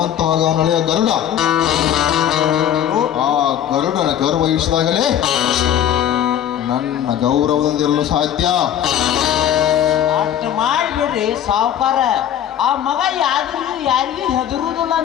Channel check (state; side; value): quieter; right; 10.3 dB